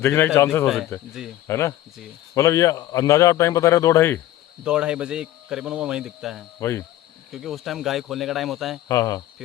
के चांसेस हो सकते हैं, जी। है ना? जी। मतलब ये अंदाजा आप टाइम बता रहे हो 2-2:30? 2-2:30 बजे करीबन वो वहीं दिखता है। वही, क्योंकि उस टाइम गाय खोलने का टाइम होता है। हाँ हाँ।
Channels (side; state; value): right; quieter; 14.1 dB